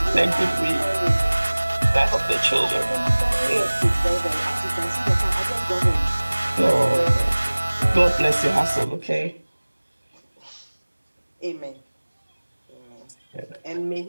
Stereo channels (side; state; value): both; inverted; correlation -1.00